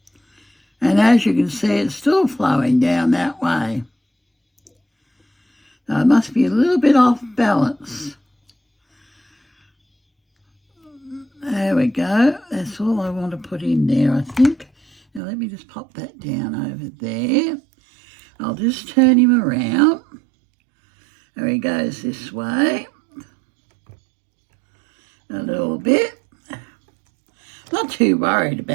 And as you can see, it's still flowing down that way. So it must be a little bit off balance. There we go. That's all I want to put in there, I think. Now let me just pop that down over there. I'll just turn him around. There he goes this way. A little bit. Not too worried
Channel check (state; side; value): drops out; left; at 15.2 s